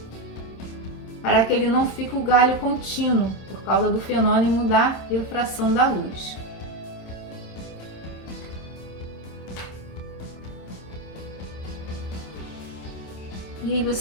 para que ele não fique o galho contínuo, por causa do fenômeno da refração da luz. E aí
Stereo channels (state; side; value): late; right; 26 ms